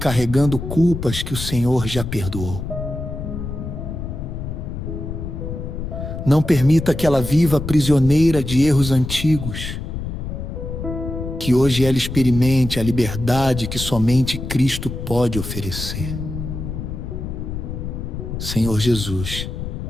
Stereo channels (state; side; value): noise; left; rumble, 6 dB below the sound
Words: culpas que o Senhor já perdoou. Não permita que ela viva prisioneira de erros antigos. Que hoje ela experimente a liberdade que somente Cristo pode oferecer. Senhor Jesus,